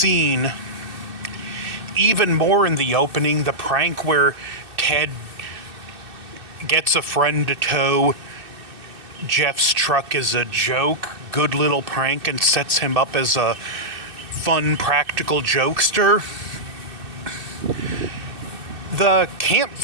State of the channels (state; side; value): late; left; 2.6 ms